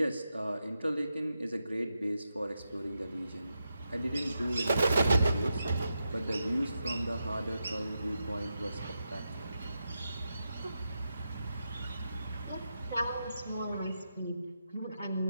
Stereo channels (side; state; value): both; inverted; correlation -0.87